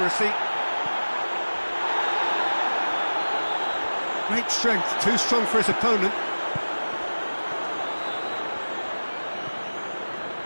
Great strength, too strong for his opponent.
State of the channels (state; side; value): inverted; both; correlation -1.00